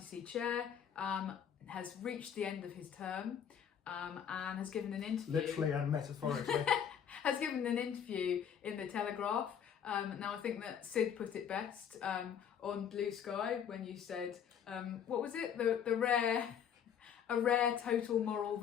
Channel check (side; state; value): right; quieter; 8.3 dB